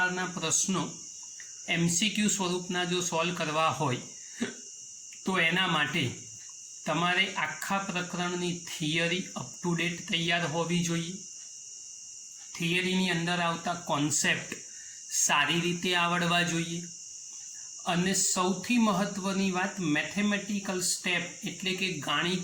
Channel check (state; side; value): identical; both; correlation 1.00